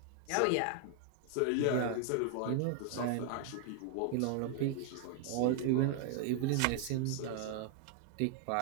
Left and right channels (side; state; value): both; different; correlation 0.00